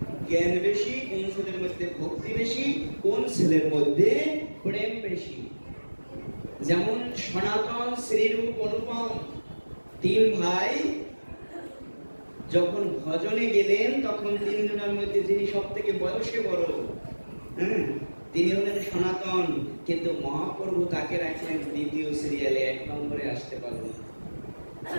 জ্ঞান বেশি, কোন ছেলের মধ্যে ভক্তি বেশি, কোন ছেলের মধ্যে প্রেম বেশি। যেমন সনাতন, শ্রীরূপ, অনুপম 3 ভাই যখন ভজনে গেলেন, তখন 3 জনের মধ্যে যিনি সব থেকে বয়সে বড়, তিনি হলেন সনাতন। কিন্তু মহাপ্রভু তাকে রাখলেন 2য় সিরিয়ালে, 1 নম্বরে আসতে পারলেন।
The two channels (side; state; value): both; inverted; correlation -1.00